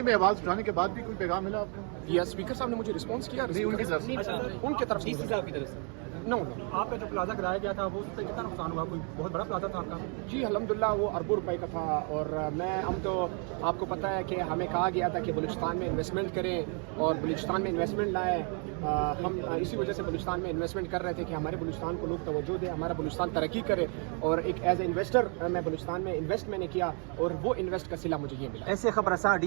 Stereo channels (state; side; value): quieter; left; 38.6 dB